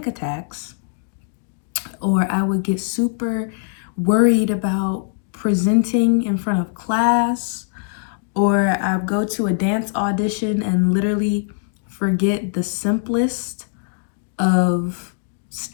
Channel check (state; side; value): silent; right; digital silence